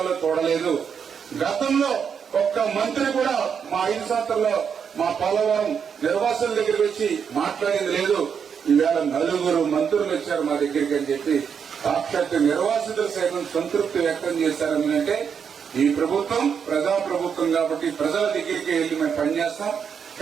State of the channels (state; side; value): quieter; left; 7.0 dB